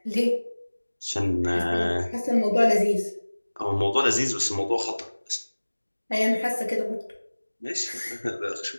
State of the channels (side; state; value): both; inverted; correlation -1.00